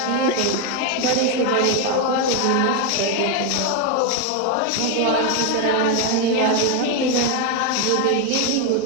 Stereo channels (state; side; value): different; both; correlation 0.01